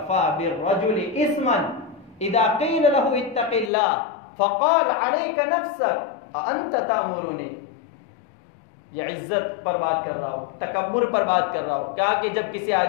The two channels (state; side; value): drops out; right; at 3.7 s